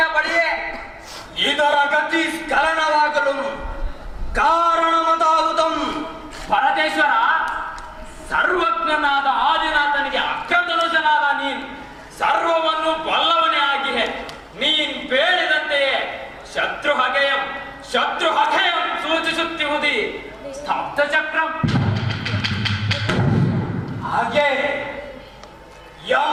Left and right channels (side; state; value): both; identical; correlation 1.00